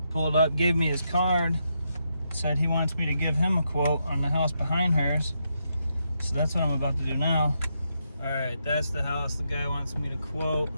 pulled up, gave me his card, said he wants me to give him a quote on the house behind hers. So that's what I'm about to do now. Alright, that's the house the guy wants me to quote.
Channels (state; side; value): inverted; both; correlation -0.81